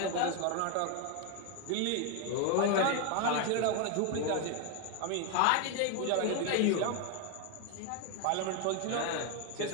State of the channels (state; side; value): different; both; correlation 0.01